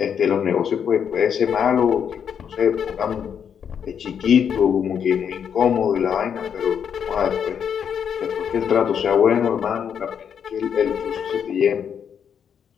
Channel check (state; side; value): quieter; right; 7.8 dB